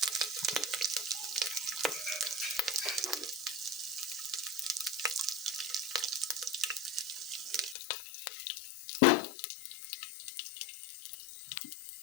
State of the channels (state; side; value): drops out; right; at 7.8 s